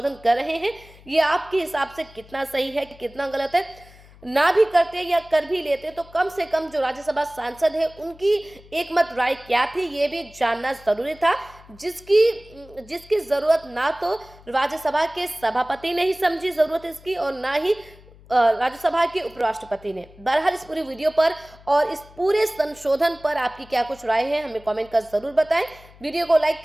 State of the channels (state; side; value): noise; left; hum, 23 dB below the sound